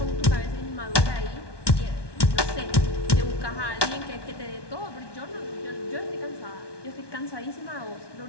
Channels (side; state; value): right; late; 1.2 ms